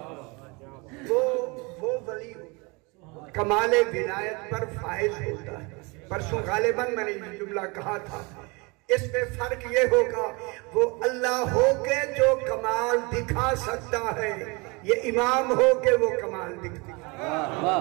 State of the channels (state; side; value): quieter; left; 28.2 dB